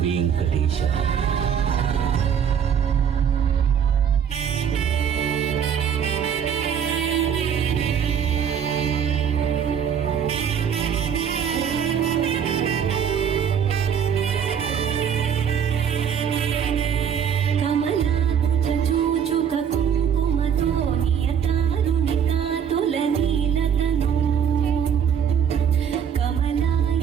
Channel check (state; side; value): quieter; left; 8.0 dB